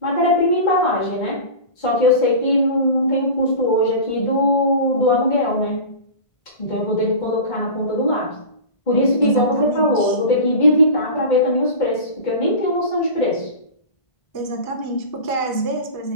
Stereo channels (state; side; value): late; right; 1.5 ms